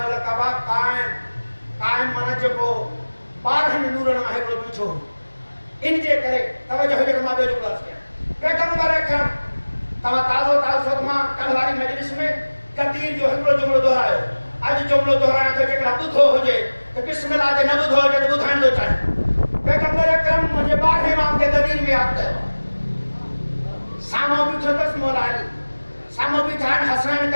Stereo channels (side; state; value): both; inverted; correlation -1.00